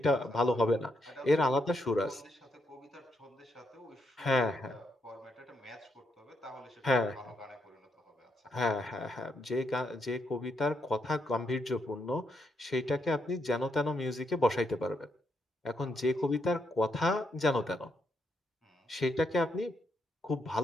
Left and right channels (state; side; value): normal; both; correlation 0.78